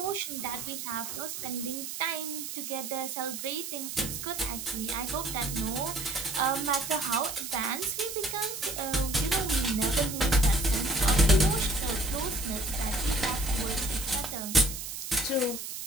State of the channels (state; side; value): noise; right; hiss, 7 dB below the sound